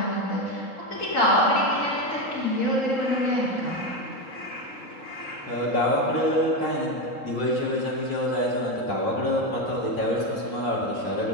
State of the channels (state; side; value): late; right; 3.8 ms